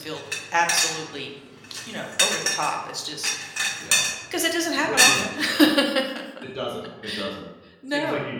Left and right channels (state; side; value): identical; both; correlation 1.00